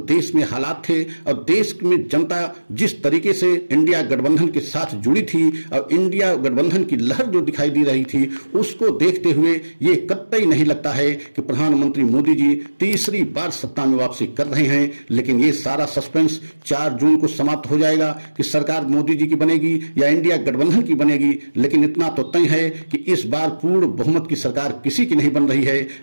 देश में हालात थे और देश में जनता जिस तरीके से इंडिया गठबंधन के साथ जुड़ी थी और इंडिया गठबंधन की लहर जो दिखाई दे रही थी, उसको देखते हुए ये कतई नहीं लगता है कि प्रधानमंत्री मोदी जी तीसरी बार सत्ता में वापसी कर रहे हैं। लेकिन ये सारा सस्पेंस 4 जून को समाप्त हो जाएगा कि सरकार मोदी जी की बनेगी या इंडिया गठबंधन की बनेगी। लेकिन इतना तो तय है कि इस बार पूर्ण बहुमत की सरकार किसी की नहीं बन रही है।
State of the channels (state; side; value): inverted; both; correlation -1.00